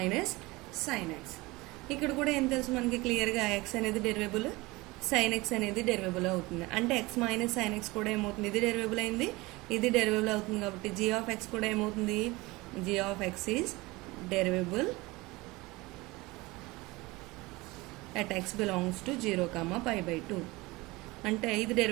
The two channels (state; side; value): quieter; left; 22.0 dB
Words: sin x. ఇక్కడ కూడా ఏం తెలుసు మనకి క్లియర్గా x అనేది డెరివేబుల్, sin x అనేది డెరివేబుల్ అవుతుంది. అంటే x మైనస్ sin x కూడా ఏమవుతుంది, ఇది డెరివేబుల్ అయింది, ఇది డెరివేబుల్ అవుతుంది కాబట్టి g ఆఫ్ x కూడా ఏమవుతుంది, g of x is derivable at x belongs to 0, π/2. అంటే ఇది